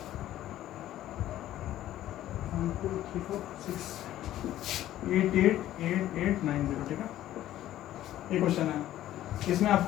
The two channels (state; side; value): quieter; right; 13.3 dB